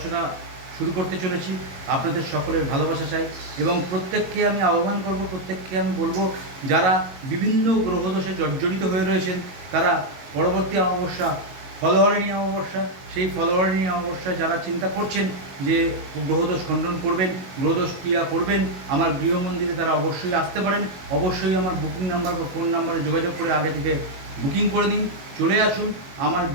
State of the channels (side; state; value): left; late; 22 ms